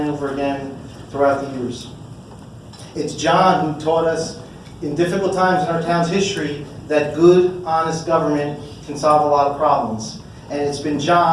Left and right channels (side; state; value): both; identical; correlation 1.00